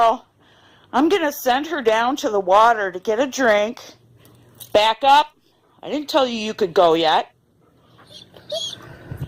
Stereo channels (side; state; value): both; identical; correlation 1.00